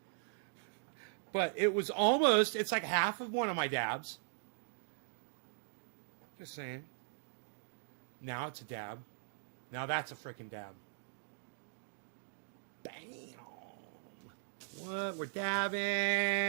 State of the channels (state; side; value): silent; left; digital silence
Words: But it was almost, it's like half of one of my dabs. Just saying. Now it's a dab. Now that's a freaking dab. Bam. What? We're